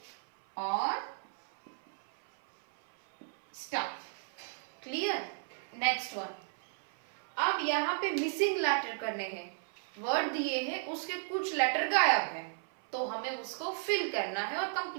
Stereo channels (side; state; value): left; silent; 55 dB below the other